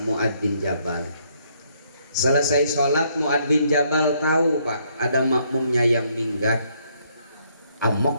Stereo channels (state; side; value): inverted; both; correlation -0.70